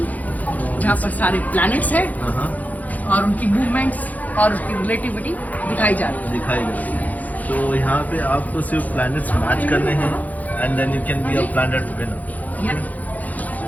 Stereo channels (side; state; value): right; late; 0.078 ms